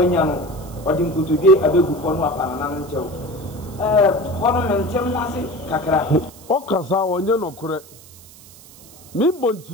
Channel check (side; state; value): right; noise; hiss, 21 dB below the sound